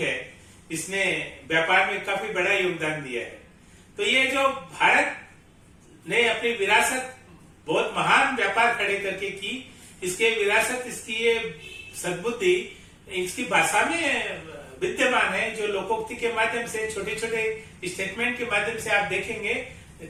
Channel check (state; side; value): identical; both; correlation 1.00